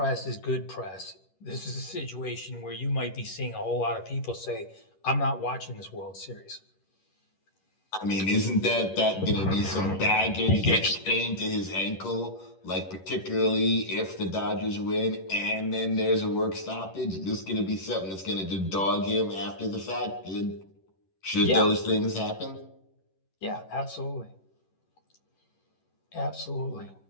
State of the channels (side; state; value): right; late; 11 ms